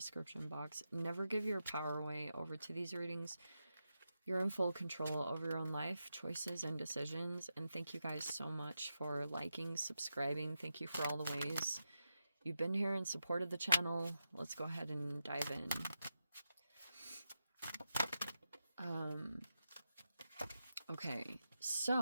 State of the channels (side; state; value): both; inverted; correlation -0.88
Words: box. Never give your power away over to these readings. You're in full control over your own life, choices, and decisions. And thank you guys so much for liking, subscribing. Thank you for all the ways you've been here and supported the channel. Let's go ahead and dive in. Okay,